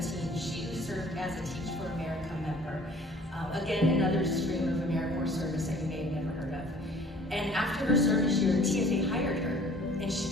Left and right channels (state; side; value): normal; both; correlation 0.51